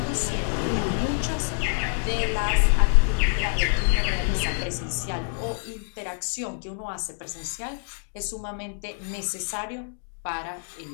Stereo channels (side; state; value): right; silent; digital silence